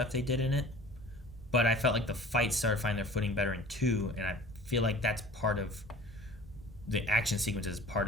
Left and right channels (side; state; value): both; normal; correlation 0.44